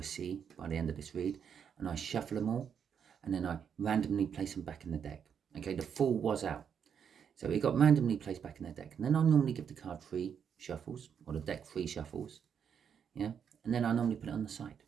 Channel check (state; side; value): quieter; left; 7.6 dB